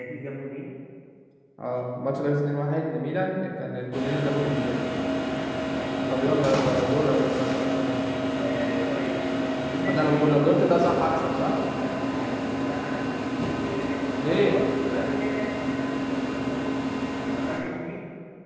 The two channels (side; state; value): both; identical; correlation 1.00